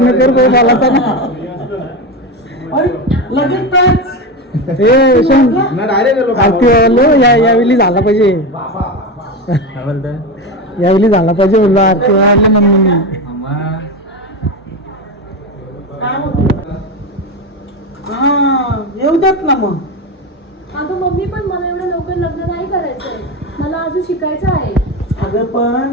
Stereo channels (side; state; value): both; normal; correlation 0.19